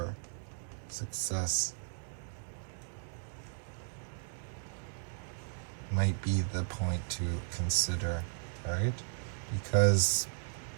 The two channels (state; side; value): silent; left; digital silence